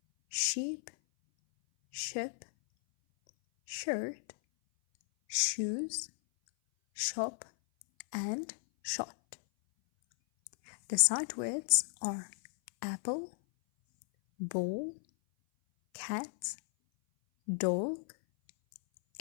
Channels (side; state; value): right; silent; 55 dB below the other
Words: sheep, ship, shirt, shoes, shop, and shot. The sight words are apple, ball, cat, dog,